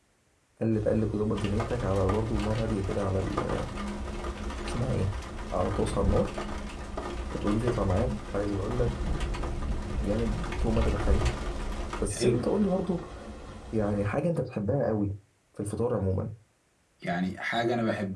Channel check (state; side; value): identical; both; correlation 1.00